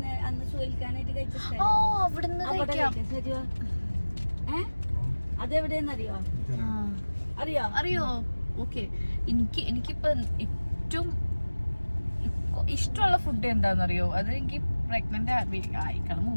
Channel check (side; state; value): both; inverted; correlation -1.00